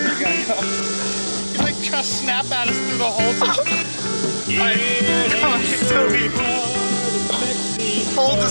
He's like trying to snap at us through the holes. Alright, come on, Toby. Hold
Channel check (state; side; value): inverted; both; correlation -1.00